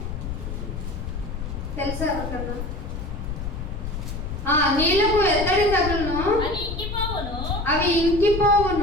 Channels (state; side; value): noise; left; rumble, 6 dB below the sound